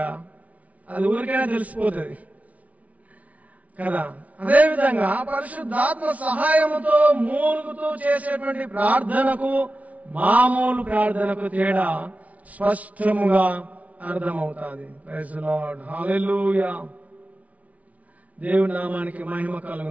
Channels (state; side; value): late; left; 0.069 ms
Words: అది ఊరికైనా తెలిసిపోతుంది కదా. అదేవిధంగా పరిశుద్ధాత్మ సహాయముతో మూలుగుతూ చేసేటువంటి ప్రార్థనకు మామూలు ప్రార్థనకు తేడా స్పష్టముగా అర్థమవుతుంది. ప్రైజ్ ది లార్డ్, హల్లెలూయా. దేవుని నామానికి మహిమ